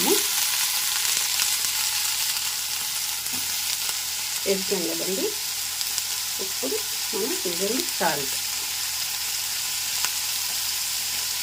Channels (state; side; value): identical; both; correlation 1.00